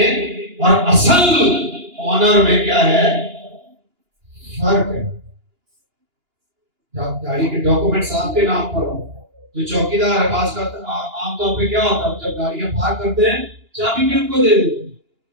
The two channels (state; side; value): late; left; 2.9 ms